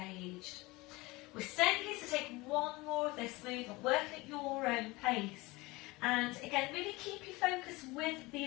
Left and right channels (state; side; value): quieter; right; 22.4 dB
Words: We're staying here to take one more of this movement, working at your own pace. And again, really keep your focus with